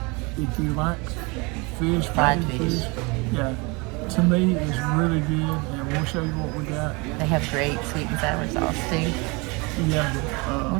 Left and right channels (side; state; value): left; quieter; 27.7 dB